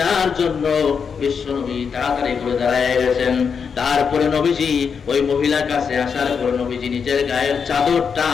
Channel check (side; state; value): right; quieter; 6.3 dB